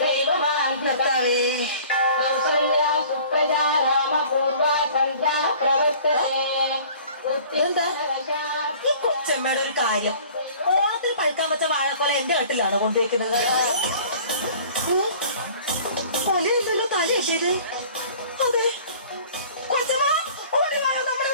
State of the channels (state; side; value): inverted; both; correlation -0.48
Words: दैवमान्धवे कौसल्या सुप्रजा रामपूर्वा सन्ध्या प्रवर्तते उत्तिष्ठ नरशार्दूल. ഈ കൊച്ചമ്മയുടെ ഒരു കാര്യം, ഓണത്തിൽ പഴുക്കാൻ വെച്ച വാഴക്കൊല എന്റെ വീട്ടിലാണ് കൊണ്ടുവയ്ക്കുന്നത്. കൊലയുണ്ടല്ലോ തലയത്. അതെ കൊച്ചമ്മ, ഓടി വായോ, നമ്മുടെ